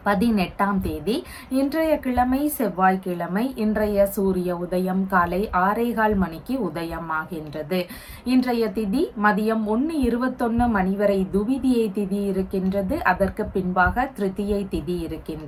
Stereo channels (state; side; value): identical; both; correlation 1.00